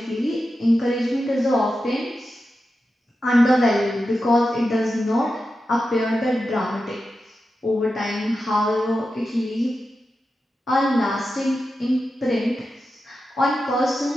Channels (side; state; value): both; normal; correlation 0.91